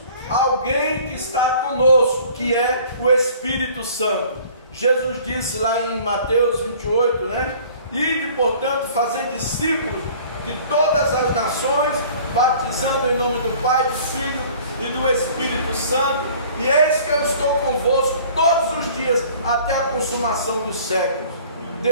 alguém que está conosco, que é o Espírito Santo. Jesus disse lá em Mateus 28, né? Ide, portanto, fazer discípulos de todas as nações, batizando em nome do Pai, do Filho e do Espírito Santo, e eis que eu estou convosco todos os dias, até a consumação dos séculos.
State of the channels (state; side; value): inverted; both; correlation -0.50